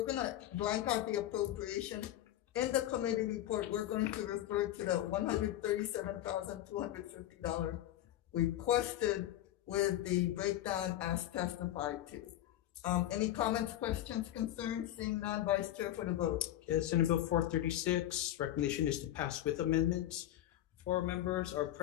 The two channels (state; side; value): quieter; right; 13.3 dB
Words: gonna blank out the appropriation. In the committee report, we're going to refer to the $137,250 requested with the breakdown as testified to. Any comments, questions, concerns? Seeing none, Vice Chair for the vote. Okay, Senate Bill 436, recommendation is to pass with amendments. 4 members are